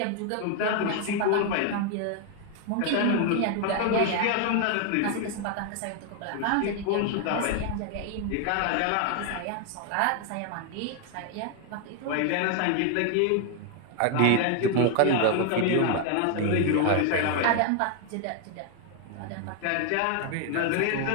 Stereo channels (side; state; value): both; different; correlation 0.01